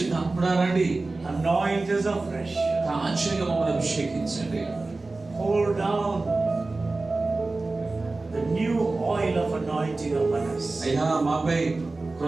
రండి. Anoint us afresh. తాజాగా మమ్మల్ని అభిషేకించండి. Pour down the new oil of anointing upon us. అయ్యా మాపై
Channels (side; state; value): left; quieter; 3.4 dB